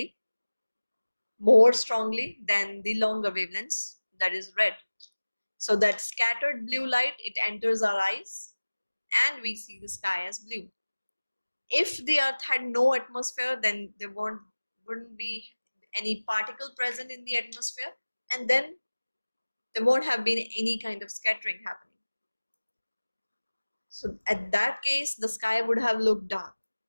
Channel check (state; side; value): inverted; both; correlation -1.00